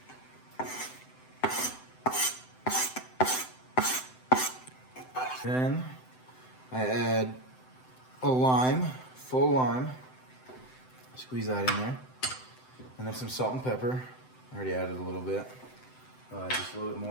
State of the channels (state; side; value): late; right; 7.8 ms